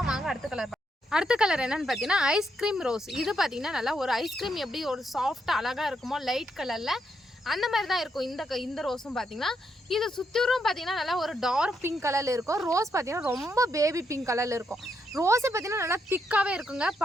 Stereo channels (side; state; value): both; normal; correlation 0.79